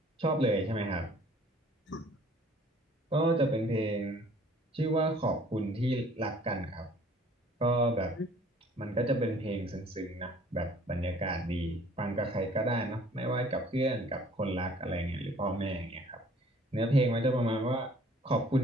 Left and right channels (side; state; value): both; normal; correlation 0.55